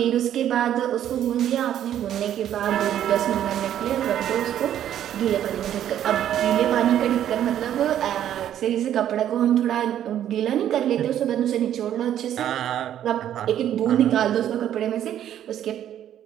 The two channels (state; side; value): quieter; left; 10.8 dB